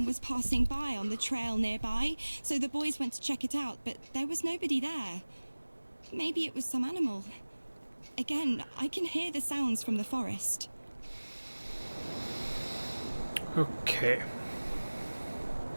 was passing by on the trail nearby, so the boys went to check it out, but there was nobody there. Maybe it was some animal. Again, I can hear the sounds from the forest. Okay.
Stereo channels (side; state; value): both; inverted; correlation -1.00